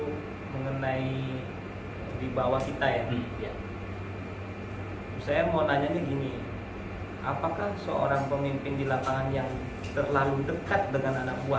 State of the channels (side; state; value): both; identical; correlation 1.00